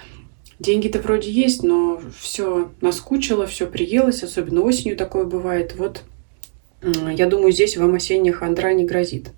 деньги-то вроде есть, но все наскучило, все приелось, особенно осенью такое бывает. Вот я думаю, здесь вам осенняя хандра не грозит.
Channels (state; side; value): silent; left; digital silence